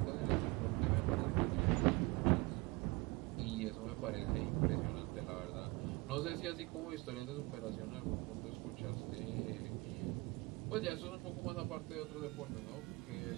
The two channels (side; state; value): left; quieter; 24.1 dB